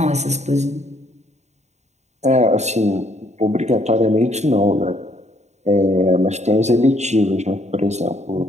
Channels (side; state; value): left; late; 0.33 ms